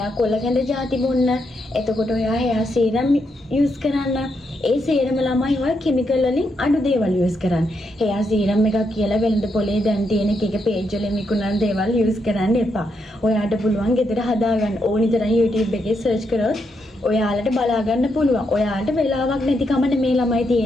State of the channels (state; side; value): normal; both; correlation 0.80